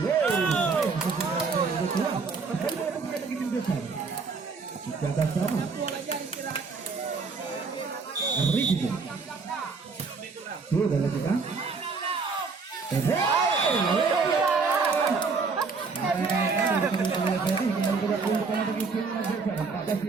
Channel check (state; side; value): quieter; left; 4.7 dB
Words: Jaga sama. Ricky. Sudah lakukan.